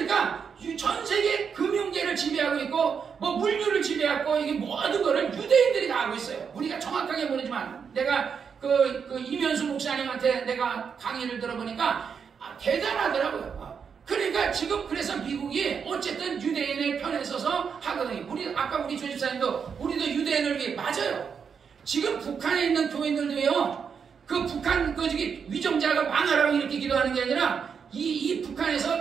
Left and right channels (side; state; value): left; quieter; 6.5 dB